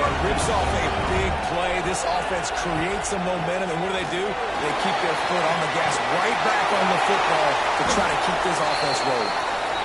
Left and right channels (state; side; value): identical; both; correlation 1.00